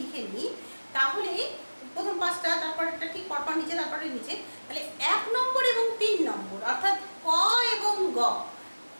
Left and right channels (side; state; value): both; inverted; correlation -1.00